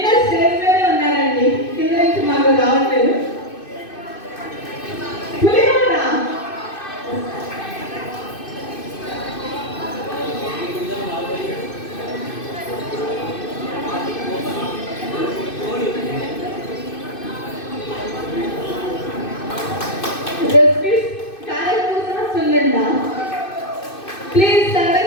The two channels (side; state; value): right; late; 2.6 ms